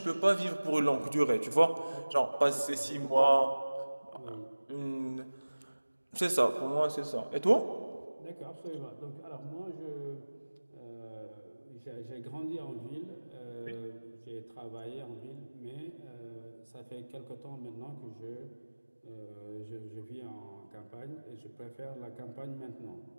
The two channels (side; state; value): both; inverted; correlation -1.00